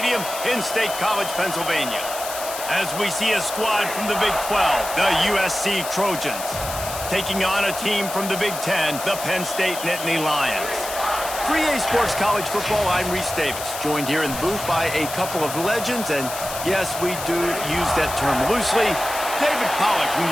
in State College, Pennsylvania. As we see a squad from the Big 12, the USC Trojans, taking on a team from the Big 10, the Penn State Nittany Lions. For EA Sports College Football, I'm Reese Davis, joined here in the booth by a couple of legends, and yes, we do use that term loosely. David Pollack from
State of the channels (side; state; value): left; noise; hiss, 8 dB below the sound